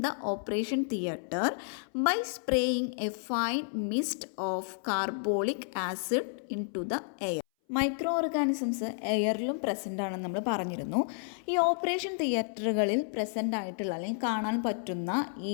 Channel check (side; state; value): right; silent; 57 dB below the other